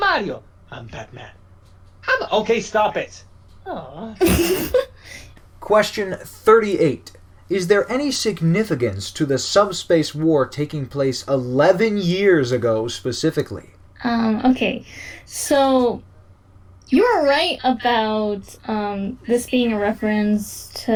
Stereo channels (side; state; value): both; identical; correlation 1.00